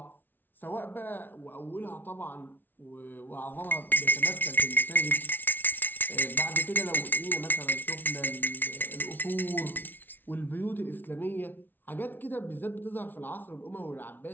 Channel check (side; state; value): right; late; 0.091 ms